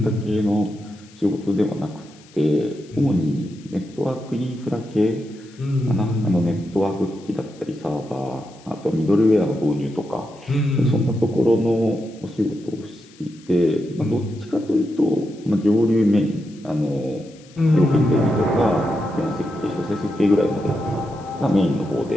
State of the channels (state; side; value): noise; left; hiss, 26 dB below the sound